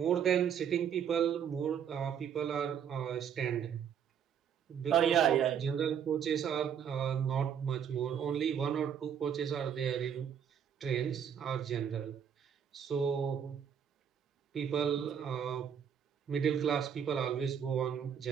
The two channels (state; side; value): quieter; left; 8.2 dB